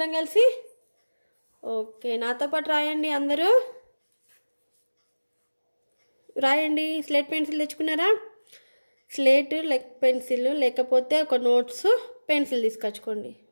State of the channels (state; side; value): inverted; both; correlation -1.00